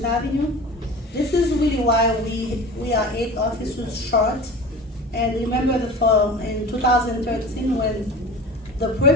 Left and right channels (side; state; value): both; normal; correlation 0.37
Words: Avenue. This is really why we are 8 officers short. And remember in 2013 when the